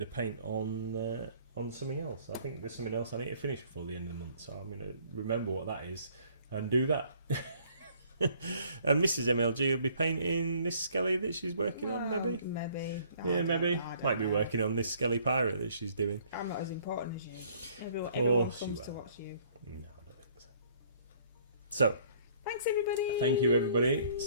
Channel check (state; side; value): inverted; both; correlation -0.59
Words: of paint on something else. I think there's something else I need to finish before the end of the month, so I'm going to remember what that is and do that. And Mrs. MLG will be painting this Skelly that she's working on, maybe? Maybe. Yeah, maybe. Might be working on this Skelly pirate that she's doing. I'm not as important as you. Everyone course comes you to are. watch you. No, I don't think so. So, Thanks, everybody. Thank you, everybody.